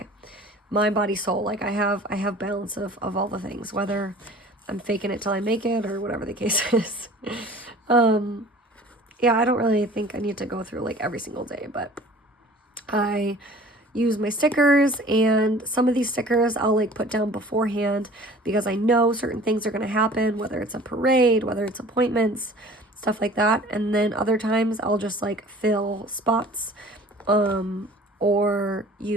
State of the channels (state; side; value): normal; both; correlation 0.46